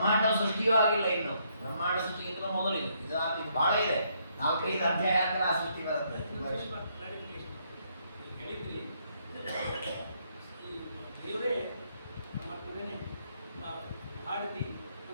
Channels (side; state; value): both; inverted; correlation -0.72